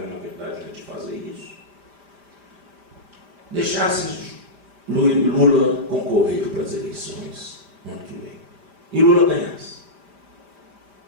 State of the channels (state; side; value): late; left; 5.0 ms